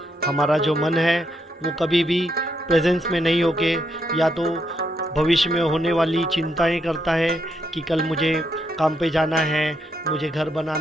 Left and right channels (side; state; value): both; normal; correlation 0.78